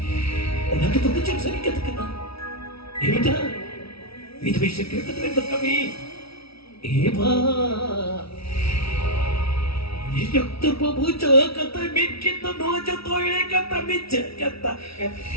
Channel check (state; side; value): late; right; 0.76 ms